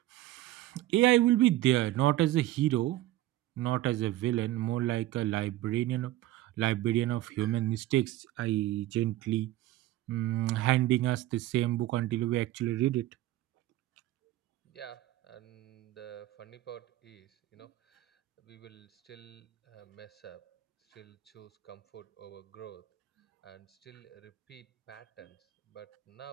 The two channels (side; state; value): left; quieter; 15.4 dB